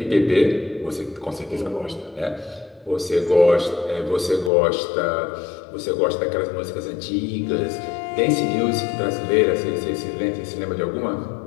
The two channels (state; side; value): drops out; right; at 4.5 s